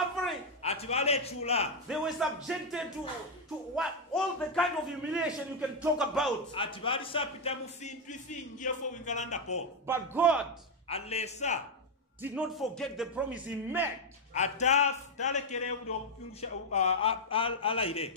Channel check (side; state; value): both; normal; correlation 0.02